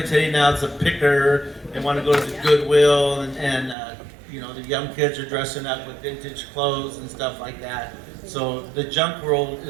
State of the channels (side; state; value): left; drops out; at 3.8 s